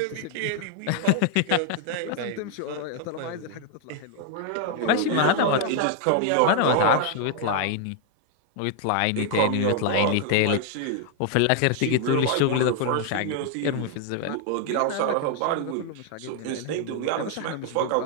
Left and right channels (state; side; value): different; both; correlation 0.00